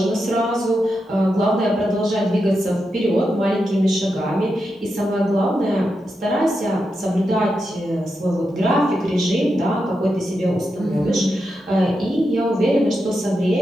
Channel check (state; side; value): normal; both; correlation 0.87